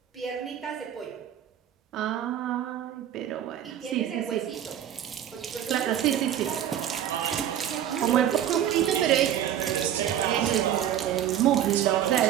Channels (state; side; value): quieter; left; 10.4 dB